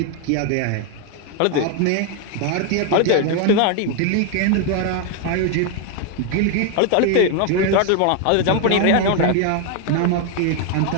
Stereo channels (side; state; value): both; different; correlation 0.01